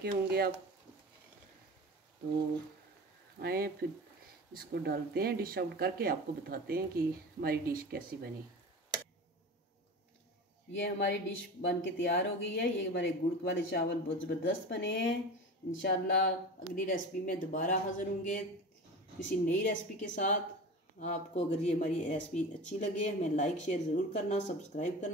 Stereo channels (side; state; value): both; normal; correlation 0.32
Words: होंगे आप। तो आए फिर इसको डालते हैं, डिश आउट करके आपको बताते हैं कि हमारी डिश कैसी बनी। ये हमारी डिश बन के तैयार हो गई है। ये हमारे गुड़ वाले चावल बहुत ज़बरदस्त बने हैं। इंशाल्लाह अगली रेसिपी में दोबारा हाज़िर होंगे किसी नई रेसिपी के साथ। आपको अगर ये हमारी रेसिपी अच्छी लगे हमें लाइक शेयर ज़रूर करना, सब्सक्राइब